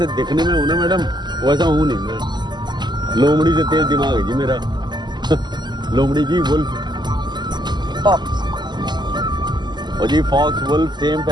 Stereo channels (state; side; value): late; left; 0.21 ms